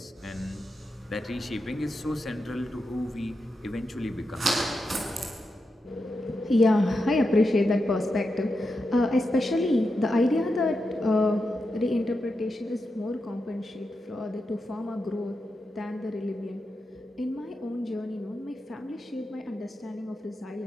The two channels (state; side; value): normal; both; correlation 0.88